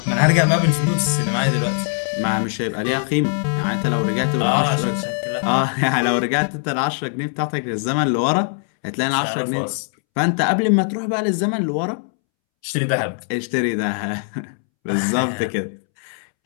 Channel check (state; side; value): silent; right; 65 dB below the other